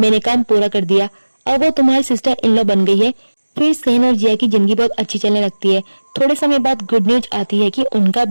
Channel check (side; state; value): both; inverted; correlation -1.00